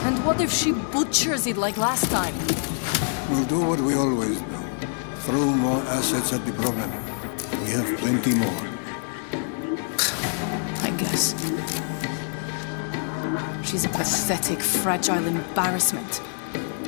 And what if she butchers it like last time? We'll do what we always do. Throw more assets at the problem. We have plenty more. I guess. She's a pathetic, fragile embarrassment.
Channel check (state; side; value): silent; right; 62 dB below the other